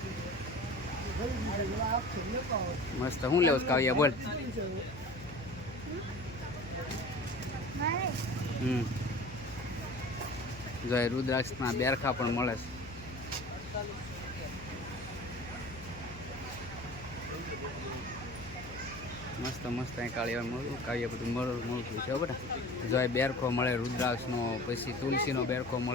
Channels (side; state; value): left; noise; hum, 16 dB below the sound